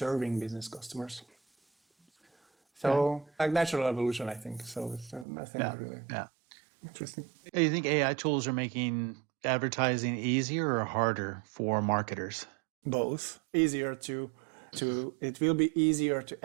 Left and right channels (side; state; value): left; drops out; at 5.2 s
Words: business customers. So like natural evolution, I think. So it's nothing really interesting. Do you think AI tools are making advertising easier or harder for marketers? Both. Easier to it will be easier